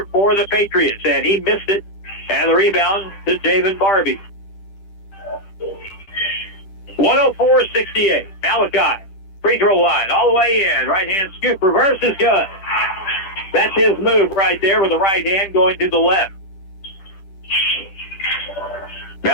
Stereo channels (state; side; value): late; right; 10 ms